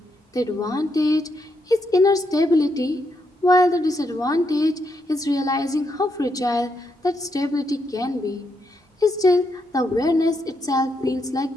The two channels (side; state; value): both; normal; correlation 0.79